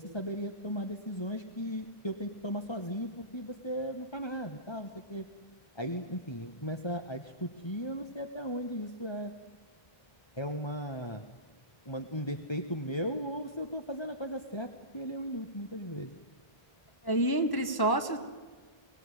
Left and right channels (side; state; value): right; late; 1.1 ms